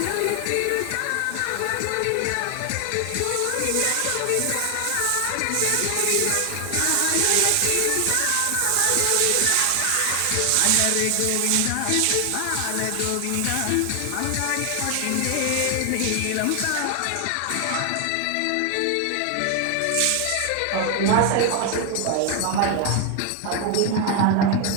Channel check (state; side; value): different; both; correlation 0.00